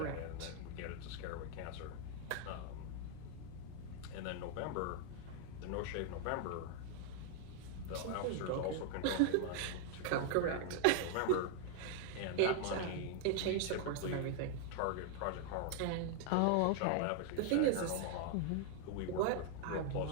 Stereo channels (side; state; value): both; different; correlation 0.00